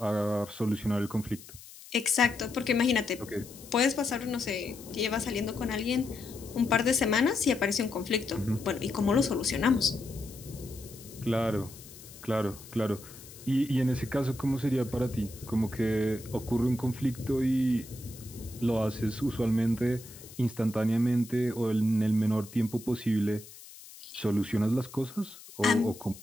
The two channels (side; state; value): left; noise; hiss, 18 dB below the sound